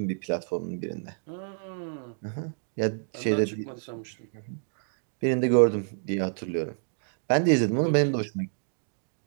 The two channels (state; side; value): silent; left; digital silence